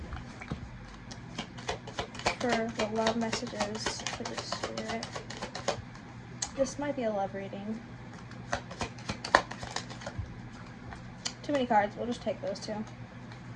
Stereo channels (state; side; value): identical; both; correlation 1.00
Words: For the love messages for the spirit. This might be a love reading. Too many cards, we'll just take those two.